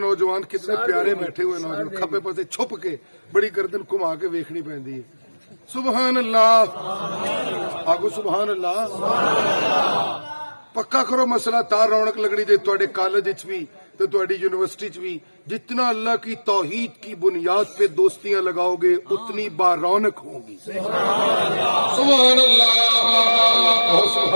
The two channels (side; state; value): both; inverted; correlation -1.00